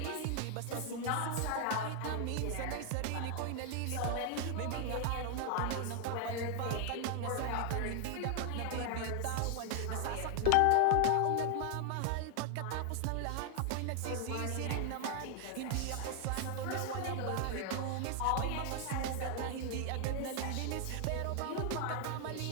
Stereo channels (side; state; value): both; different; correlation 0.00